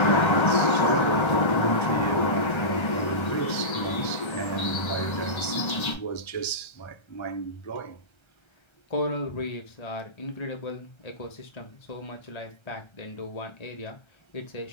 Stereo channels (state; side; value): late; right; 1.3 ms